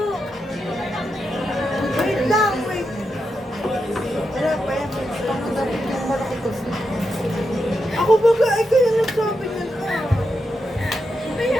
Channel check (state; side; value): normal; both; correlation 0.86